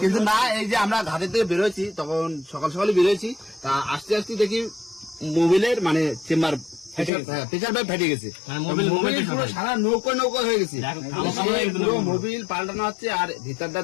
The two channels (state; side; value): drops out; right; at 7.1 s